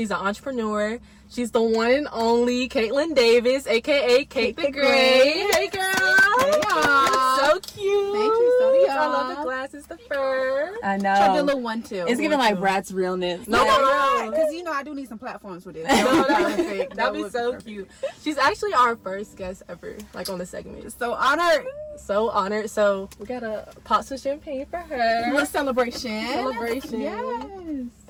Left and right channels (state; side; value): identical; both; correlation 1.00